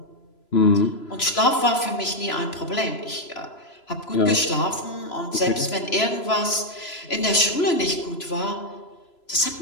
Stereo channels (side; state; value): right; late; 3.0 ms